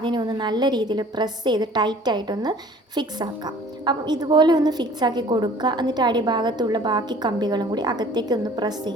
ഒന്ന് നല്ല രീതിയിൽ പ്രസ് ചെയ്ത് ടൈറ്റായിട്ടൊന്ന് ഫിക്സ് ആക്കാം. അപ്പം ഇതുപോലെ ഒന്ന് ഫിക്സ് ആക്കി കൊടുക്കുക. എന്നിട്ട് അടിഭാഗത്തുള്ള ബാക്കി കമ്പികളും കൂടി അകത്തേക്ക് ഒന്ന് പ്രസ്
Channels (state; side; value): normal; both; correlation 0.51